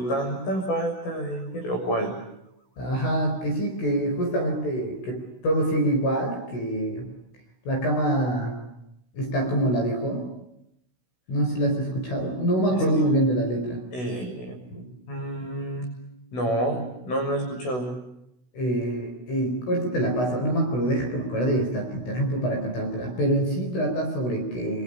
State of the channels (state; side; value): late; right; 16 ms